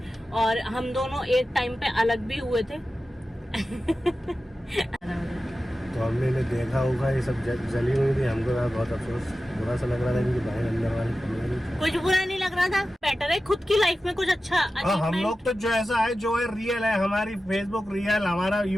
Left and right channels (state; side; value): normal; both; correlation 0.94